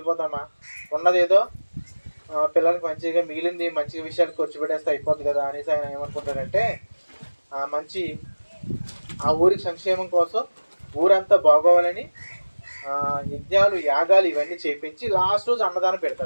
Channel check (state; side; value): inverted; both; correlation -1.00